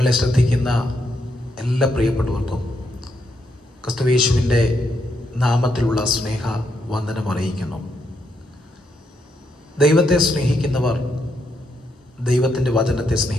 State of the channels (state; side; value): normal; both; correlation 0.79